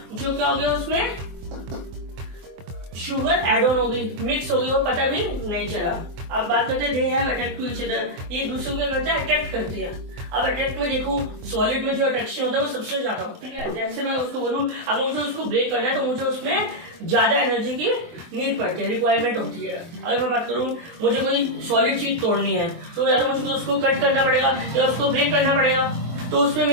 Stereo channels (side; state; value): left; late; 24 ms